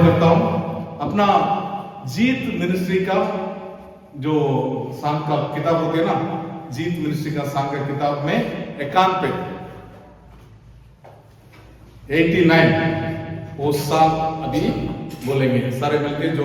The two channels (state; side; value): identical; both; correlation 1.00